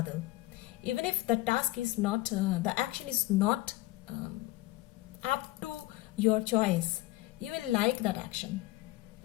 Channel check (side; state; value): right; quieter; 18.9 dB